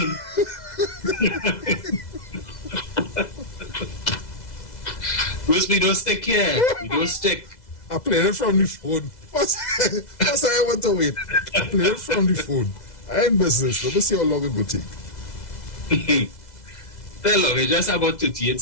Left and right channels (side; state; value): right; late; 2.0 ms